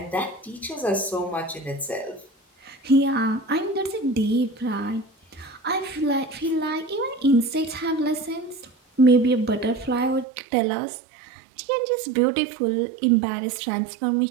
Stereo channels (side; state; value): left; drops out; at 10.2 s